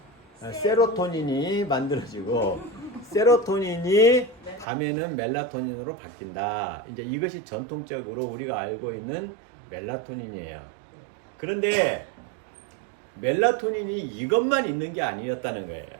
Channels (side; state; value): left; drops out; at 4.7 s